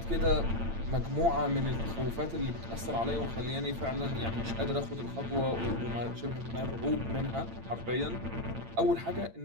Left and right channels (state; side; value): late; left; 8.8 ms